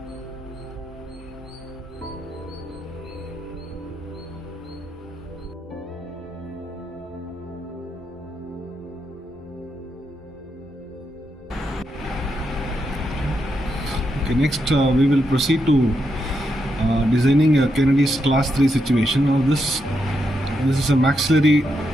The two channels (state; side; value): normal; both; correlation 0.83